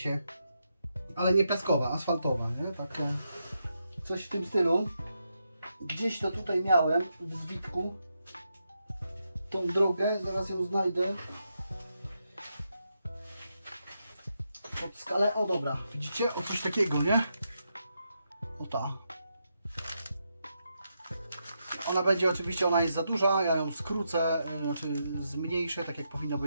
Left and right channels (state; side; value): inverted; both; correlation -0.83